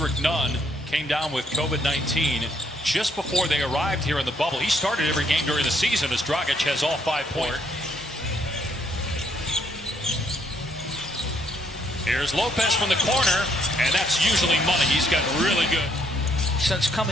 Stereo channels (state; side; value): normal; both; correlation 0.70